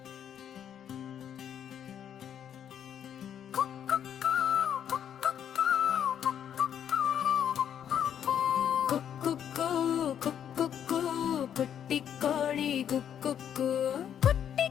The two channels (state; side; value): quieter; right; 9.2 dB